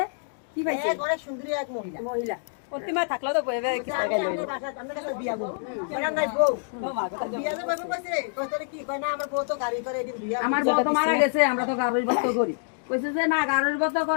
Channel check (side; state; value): right; silent; digital silence